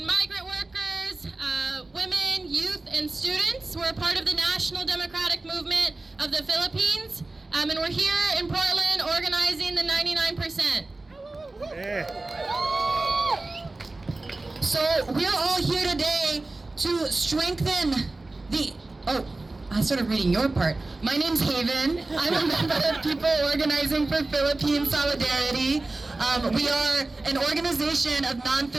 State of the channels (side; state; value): left; quieter; 3.1 dB